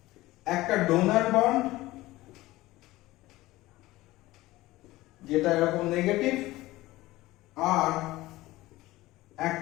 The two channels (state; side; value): quieter; right; 18.1 dB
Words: একটা ডোনার বন্ড যেটা এরকম নেগেটিভ, আর